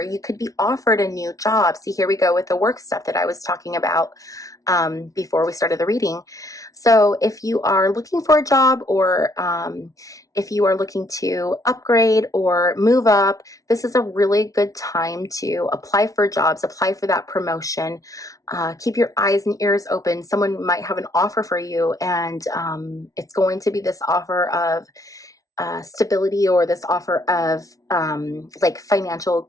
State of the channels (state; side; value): late; right; 0.17 ms